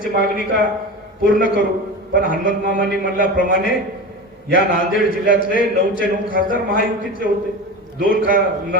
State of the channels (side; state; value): both; normal; correlation 0.28